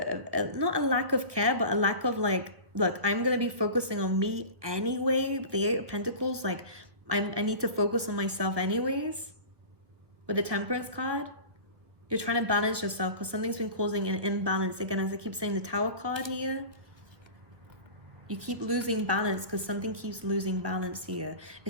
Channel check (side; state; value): left; late; 1.5 ms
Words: not a lack of care, but a lack of look, I'm going to be focusing on me anyway. The Eight of Pentacles, I need to focus on myself anyways. With the Temperance card, you're trying to balance yourself because something's been causing an imbalance. Again, as I keep saying, the Tower card here, you keep losing balance because something keeps losing balance here.